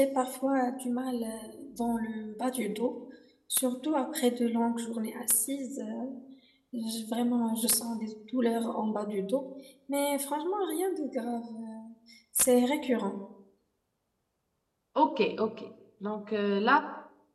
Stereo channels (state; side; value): identical; both; correlation 1.00